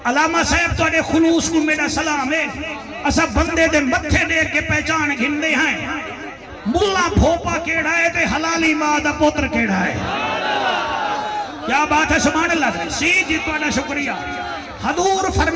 علامہ صاحب تو اڑے خلوص کو میرا سلام ہے اسا بندے دے متھے دیکھ کے پہچان گھندے ہیں ملا بھوپا کیڑا ہے تے حلالی ماں دا پوتر کیڑا ہے کیا بات ہے سبحان اللہ سی جی تو اڑا شکریہ حضور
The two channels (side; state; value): both; identical; correlation 1.00